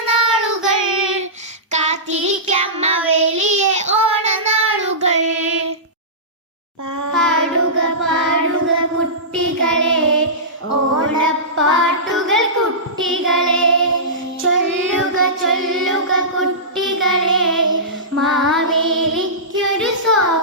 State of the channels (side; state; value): both; normal; correlation -0.19